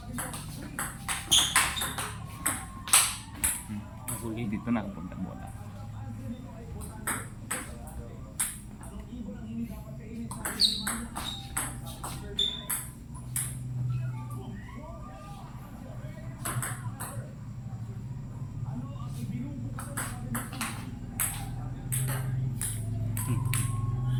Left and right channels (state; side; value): identical; both; correlation 1.00